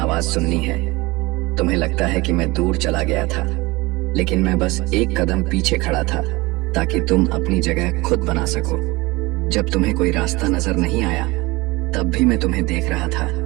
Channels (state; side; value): quieter; left; 22.4 dB